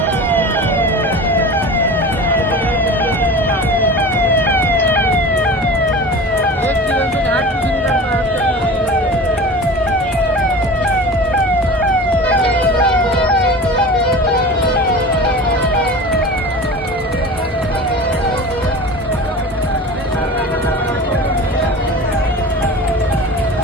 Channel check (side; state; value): both; normal; correlation 0.35